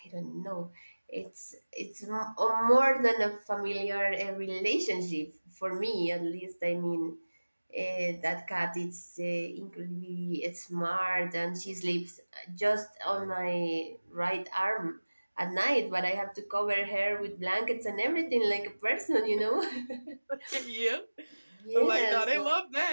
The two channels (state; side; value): inverted; both; correlation -1.00